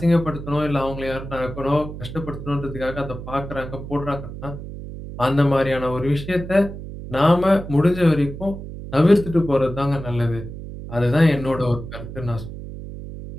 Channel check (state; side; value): noise; right; hum, 10 dB below the sound